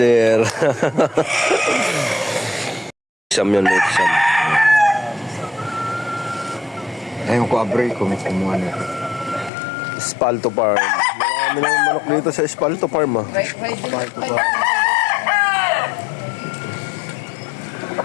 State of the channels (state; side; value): drops out; right; at 9.5 s